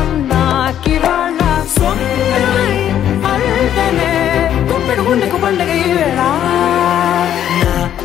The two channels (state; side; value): quieter; right; 10.6 dB